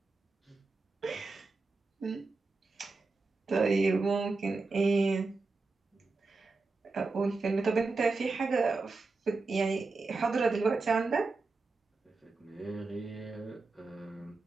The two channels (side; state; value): left; quieter; 3.8 dB